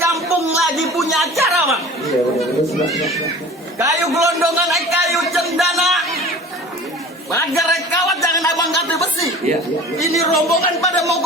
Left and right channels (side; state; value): both; normal; correlation 0.41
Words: lagi punya acara, Bang. Kayu gelondongan, kayu cendana. Bagar kawat, jangan abang ganti besi. Ini rombongan pada mau